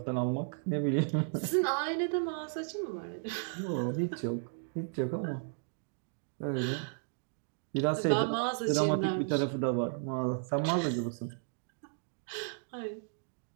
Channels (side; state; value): left; silent; digital silence